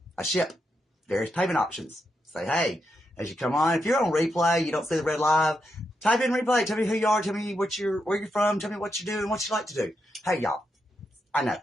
I ship various payment options. Say, hey, as you come on, if you're on replay, you don't see the red live, type in replay. Tell me who you are. Tell me where you're from. Tell me what you do and what you like to do. Hey, y'all. I know.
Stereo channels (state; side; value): normal; both; correlation 0.83